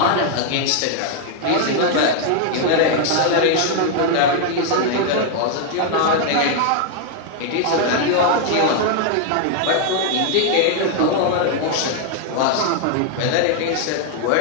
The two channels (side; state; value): both; different; correlation 0.00